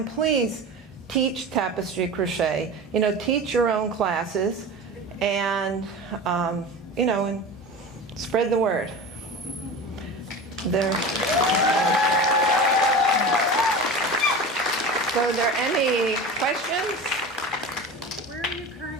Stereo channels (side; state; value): both; normal; correlation 0.31